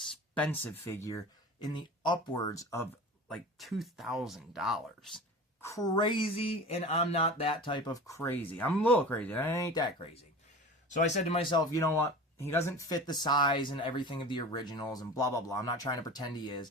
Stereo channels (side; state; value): both; normal; correlation 0.35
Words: figure in the upwards of like $2,000. Crazy, and I'm not that type of crazy. I'm a little crazy. I ain't that crazy. So I said to myself, you know what? He doesn't fit the size and everything of the originals and blah, blah, blah. I'm not trying to pretend he is.